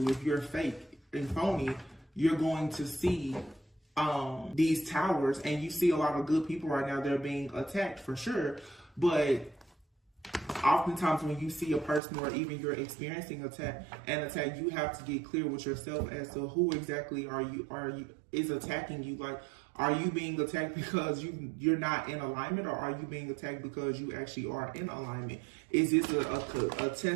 If you're fake and phony, you're going to see these towers, and you see a lot of good people right now. They're being attacked for sure, but oftentimes when you see a person, or even you're experiencing an attack, you have to get clear with yourself as to who exactly is attacking you. Like, are you being attacked because you're not in alignment, or are you being attacked because you actually are in alignment? Is this a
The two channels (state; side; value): drops out; left; at 12.0 s